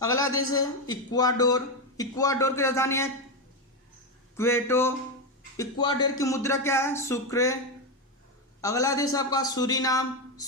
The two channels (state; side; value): normal; both; correlation 0.09